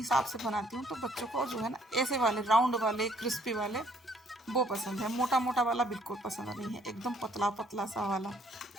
से बनाती हूँ, तो बच्चों को जो है ना ऐसे वाले राउंड वाले क्रिस्पी वाले वो पसंद है, मोटा मोटा वाला बिल्कुल पसंद नहीं है, एकदम पतला पतला सा वाला।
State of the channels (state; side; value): normal; both; correlation 0.63